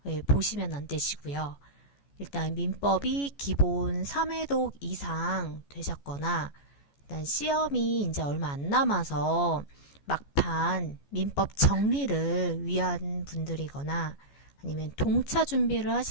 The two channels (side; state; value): right; late; 14 ms